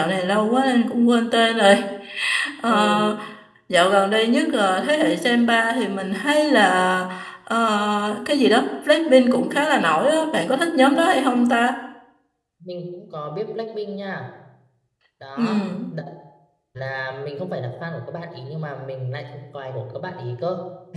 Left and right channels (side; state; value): both; identical; correlation 1.00